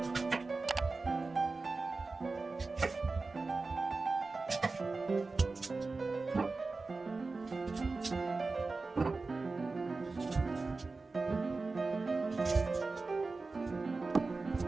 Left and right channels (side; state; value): left; quieter; 3.8 dB